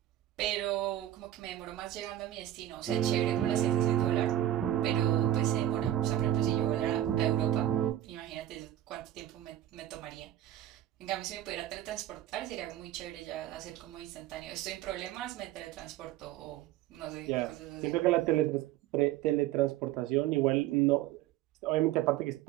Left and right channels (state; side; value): quieter; left; 12.8 dB